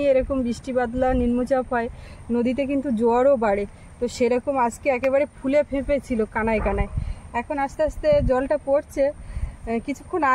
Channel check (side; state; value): both; identical; correlation 1.00